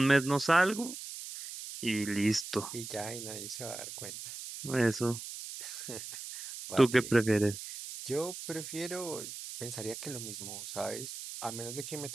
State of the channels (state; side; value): noise; right; hiss, 9 dB below the sound